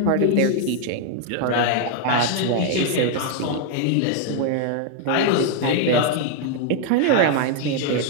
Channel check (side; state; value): both; different; correlation 0.00